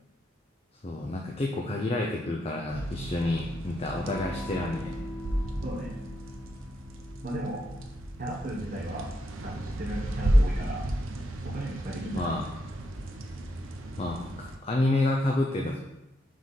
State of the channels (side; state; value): both; normal; correlation 0.80